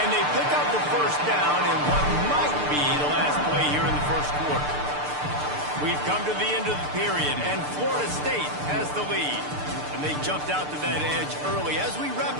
And they pick up the first down in what might be the last play here in the first quarter. We've come to the end of the period, and Florida State has the lead. And they jumped out to that edge early. As we wrap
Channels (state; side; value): late; left; 6.7 ms